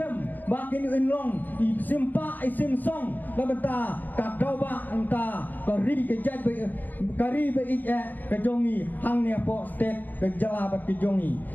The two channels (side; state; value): right; late; 0.087 ms